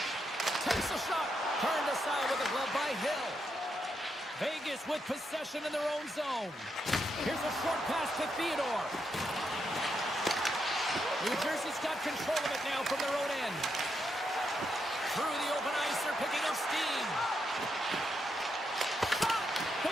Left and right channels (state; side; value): normal; both; correlation 0.81